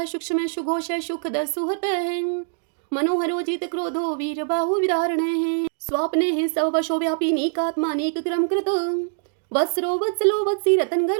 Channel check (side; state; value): left; silent; digital silence